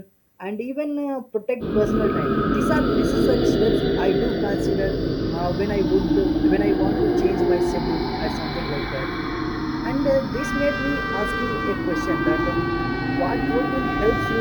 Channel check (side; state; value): both; identical; correlation 1.00